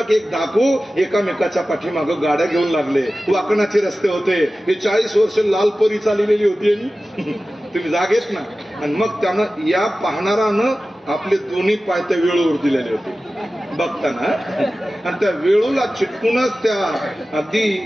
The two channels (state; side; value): normal; both; correlation 0.95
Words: एक डाकू एकामेकाच्या पाठीमागं गाड्या घेऊन लागले. वाकणाचे रस्ते होते. हे 40 वर्ष लालपरी चाललेली होती. तुम्ही जागेच ना. आणि मग त्यानं या पाहणारानं आपले दोन्ही पाय त्या वेळूवर दिलेले होते बघताना. आणि त्या वेळूला चिटकूनच त्या अगदी